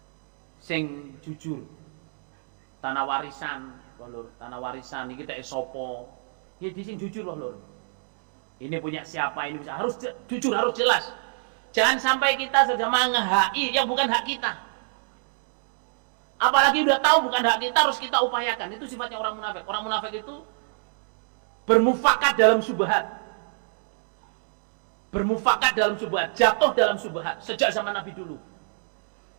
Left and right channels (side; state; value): left; silent; digital silence